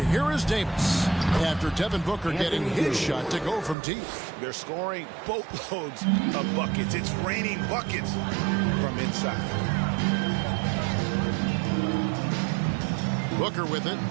here is Davis after Devin Booker getting his shot to go from deep. They're scoring boatloads of buckets. It's raining buckets from inside. Booker with it.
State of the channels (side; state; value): left; drops out; at 3.8 s